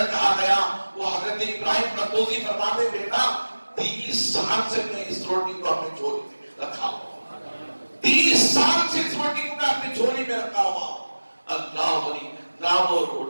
کہا گیا. وہ حضرت ابراہیم قدوسی فرماتے بیٹا 30 سال سے میں اس روٹی کو اپنے جھولی میں رکھا ہوا, 30 سال سے اس روٹی کو میں اپنے جھولی میں رکھا ہوا. اللہ علی, نہ وہ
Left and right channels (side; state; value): both; inverted; correlation -1.00